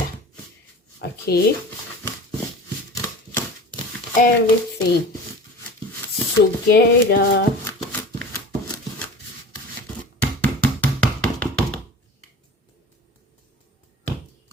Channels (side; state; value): both; normal; correlation 0.37